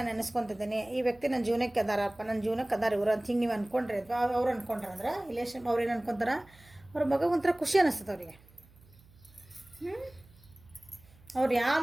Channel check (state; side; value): noise; right; hum, 26 dB below the sound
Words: ನೆನೆಸ್ಕೊತಿದ್ದೀನಿ, ಈ ವ್ಯಕ್ತಿ ನನ್ನ ಜೀವನಕ್ಕೆ ಅದಾರಪ್ಪ, ನನ್ನ ಜೀವನಕ್ಕೆ ಅದಾರ ಇವರು ಅಂತ ಹಿಂಗೆ ನೀವು ಅಂದ್ಕೊಂಡ್ರಿ ಅಥವಾ ಅವ್ರು ಅಂದ್ಕೊಂಡ್ರೆ ಅಂದ್ರೆ ರಿಲೇಷನ್ ಅವ್ರೇನು ಅನ್ಕೊತಾರ, ಅವ್ರ ಮಗ ಒಂಥರ ಖುಷಿ ಅನ್ನಿಸ್ತದೆ ಅವರಿಗೆ. ಅವ್ರು ಯಾವ